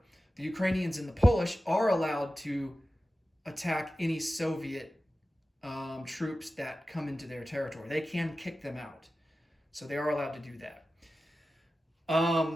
the Ukrainians and the Polish are allowed to attack any Soviet troops that come into their territory. They can kick them out. So they are allowed to do that.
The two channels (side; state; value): both; normal; correlation 0.94